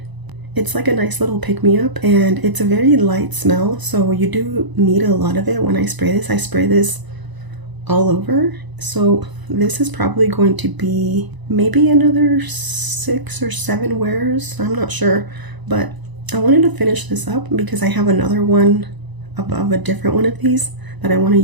It's like a nice little pick-me-up, and it's a very light smell, so you do need a lot of it when I spray this. I spray this all over, so this is probably going to be maybe another 6 or 7 wears. I'm not sure, but I wanted to finish this up because I have another one of a different one of these that I want to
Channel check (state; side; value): late; left; 1.0 ms